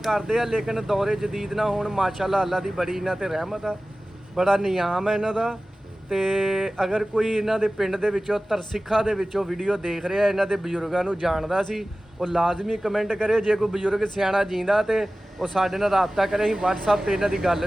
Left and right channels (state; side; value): normal; both; correlation 0.97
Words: ਆ, ਲੇਕਿਨ ਦੌਰੇ ਜਦੀਦ ਨਾਲ ਹੁਣ ਮਾਸ਼ਾਅੱਲਾ ਅੱਲਾ ਦੀ ਬੜੀ ਇਹਨਾਂ ਤੇ ਰਹਿਮਤ ਆ, ਬੜਾ ਨਿਯਾਮ ਹੈ ਇਹਨਾਂ ਦਾ। ਤੇ ਅਗਰ ਕੋਈ ਇਹਨਾਂ ਦੇ ਪਿੰਡ ਦੇ ਵਿੱਚੋਂ ਤਰਸਿੱਖਾ ਦੇ ਵਿੱਚੋਂ ਵੀਡੀਓ ਦੇਖ ਰਿਹਾ, ਇਹਨਾਂ ਦੇ ਬਜ਼ੁਰਗਾਂ ਨੂੰ ਜਾਣਦਾ ਸੀ, ਉਹ ਲਾਜ਼ਮੀ ਕਮੈਂਟ ਕਰੇ। ਜੇ ਕੋਈ ਬਜ਼ੁਰਗ ਸਿਆਣਾ ਜੀਂਦਾ ਤੇ ਉਹ ਸਾਡੇ ਨਾਲ ਰਾਬਤਾ ਕਰੇ, ਅਸੀਂ WhatsApp ਤੇ ਇਹਨਾਂ ਦੀ ਗੱਲ